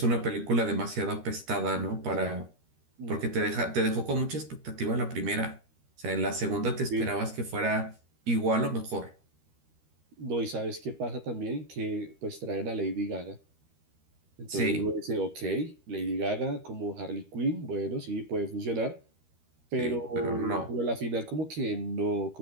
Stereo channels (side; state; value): left; late; 13 ms